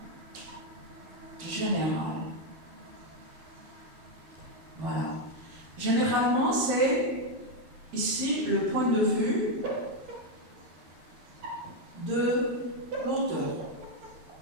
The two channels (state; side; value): late; left; 13 ms